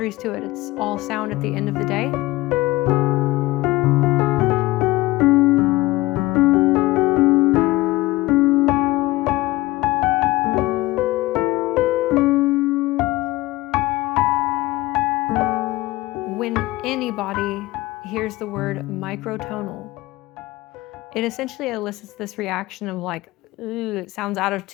to it. It's all sound at the end of the day. When anybody hears the word microtonal, it essentially elicits this reaction of like, ooh, it sounds out of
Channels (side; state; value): right; quieter; 18.9 dB